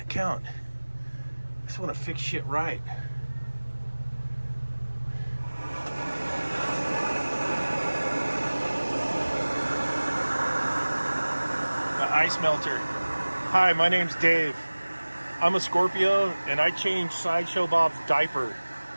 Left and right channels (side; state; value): both; inverted; correlation -1.00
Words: I just want to fix shit right. The ice melter. Hi, my name's Dave. I'm a Scorpio and I changed Sideshow Bob's diaper